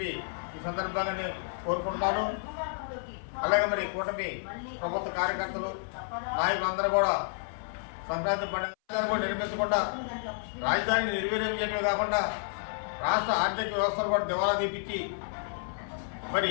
ఈ సందర్భంగా నేను కోరుకుంటున్నాను. అలాగే మరి కూటమి ప్రభుత్వ కార్యకర్తలు నాయకులందరూ కూడా సంక్రాంతి పండుగ కూడా నిర్మించకుండా రాజధానిని నిర్వీర్యం చేయడమే కాకుండా రాష్ట్ర ఆర్థిక వ్యవస్థను కూడా దివాలా తీపించి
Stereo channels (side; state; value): right; silent; 57 dB below the other